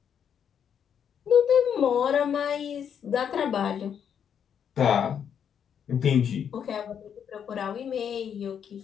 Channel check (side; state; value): right; quieter; 8.1 dB